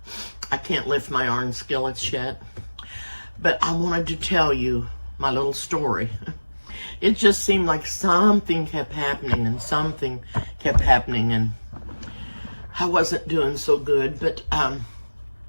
I can't lift my iron skillets yet. But I wanted to tell you my little story. It just seemed like something kept happening and something kept happening, and I wasn't doing so good. But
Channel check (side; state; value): both; inverted; correlation -1.00